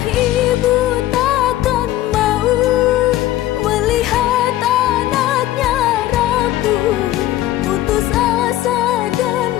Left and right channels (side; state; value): right; quieter; 14.5 dB